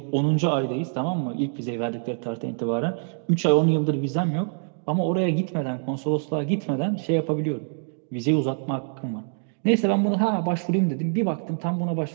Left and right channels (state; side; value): silent; left; digital silence